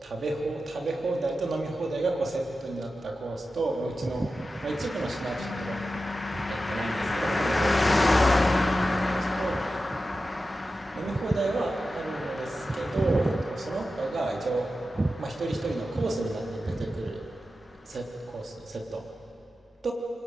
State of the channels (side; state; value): both; normal; correlation 0.92